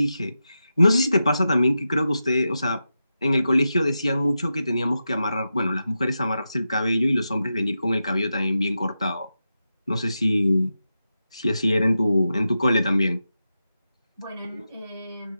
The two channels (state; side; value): inverted; both; correlation -0.90